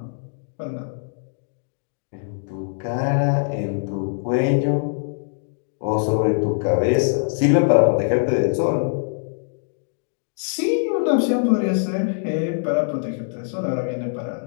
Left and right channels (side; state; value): right; silent; digital silence